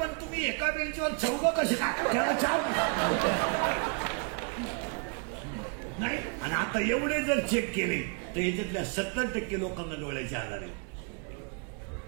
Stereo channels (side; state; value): left; quieter; 38.1 dB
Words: तुम्ही एका बेंचवर 4 कसे का? त्याला 4 नाही. आणि आता एवढे जर चेक केले तर याच्यातल्या 70% लोकांना डोळ्याचे आजार आहे.